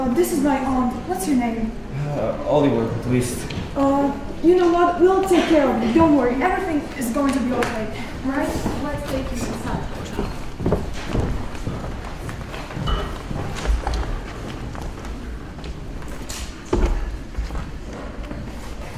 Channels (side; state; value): both; identical; correlation 1.00